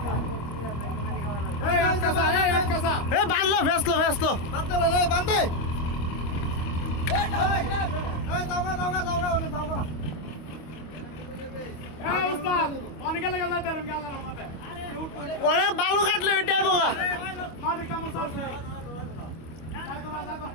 বাঁধলো ভেসলো বান্ধে ওরা বালু কাটলো এটাই বোকা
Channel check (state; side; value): late; right; 25 ms